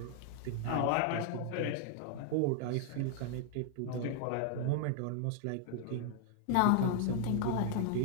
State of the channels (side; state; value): both; different; correlation 0.00